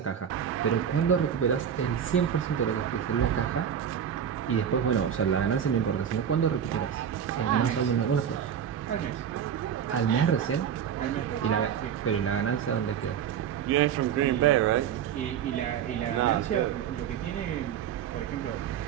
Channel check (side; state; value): left; quieter; 8.6 dB